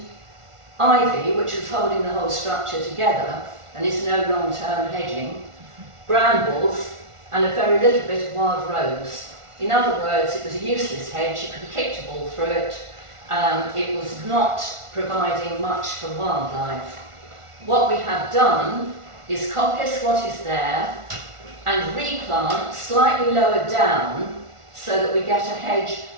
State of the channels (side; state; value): left; late; 1.4 ms